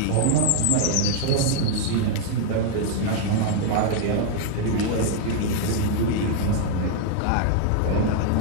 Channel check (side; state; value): both; different; correlation 0.00